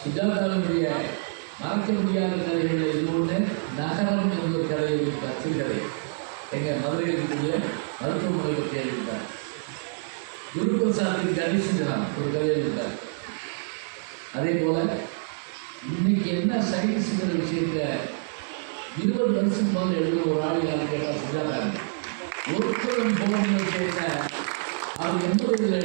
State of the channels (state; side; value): silent; left; digital silence